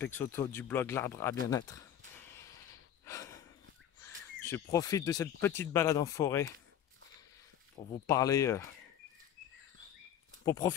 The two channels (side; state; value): right; quieter; 10.1 dB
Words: du blog L'Arbre à Bien-être. Je profite de cette petite balade en forêt pour vous parler, pour